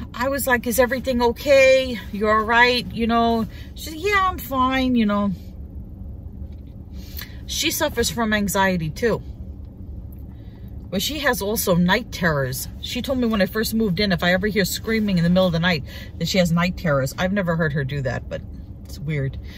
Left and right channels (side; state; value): both; identical; correlation 1.00